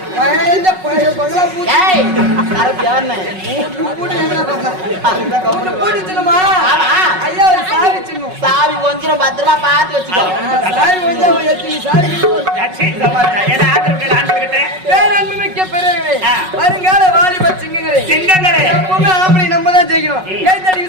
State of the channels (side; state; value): left; late; 5.4 ms